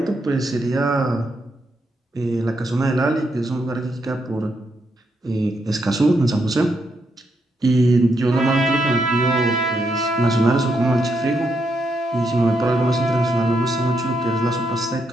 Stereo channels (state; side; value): normal; both; correlation 0.79